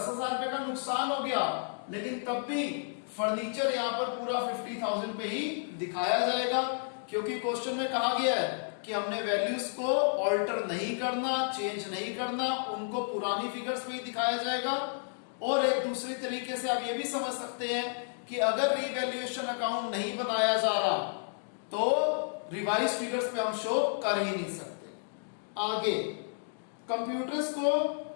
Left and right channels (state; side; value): silent; right; digital silence